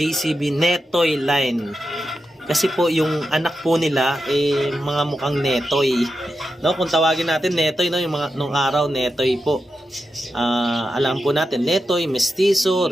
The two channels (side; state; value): both; normal; correlation 0.88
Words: Netoy line? Kasi po yung anak po nila mga mukhang Netoy. No, kung tawagin natin Netoy, no, yung mga nung araw Netoy po. Alam po natin Netoy, Mestizo,